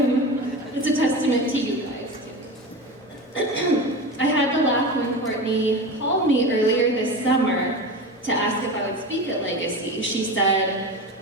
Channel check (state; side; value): normal; both; correlation 0.27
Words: it's a testament to you guys too. I had to laugh when Courtney called me earlier this summer to ask if I would speak at Legacy. She said,